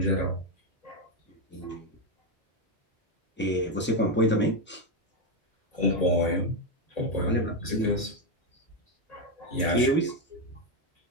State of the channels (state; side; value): normal; both; correlation 0.07